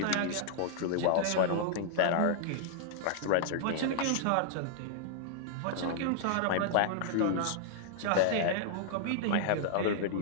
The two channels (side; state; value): both; different; correlation -0.01